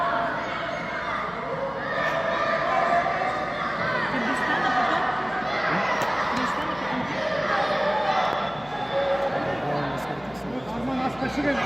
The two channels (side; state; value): left; noise; hum, 23 dB below the sound